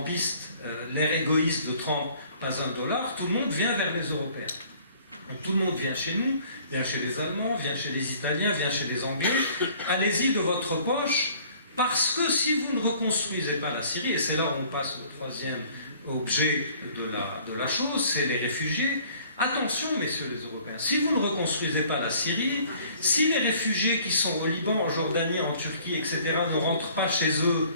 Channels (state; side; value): inverted; both; correlation -0.55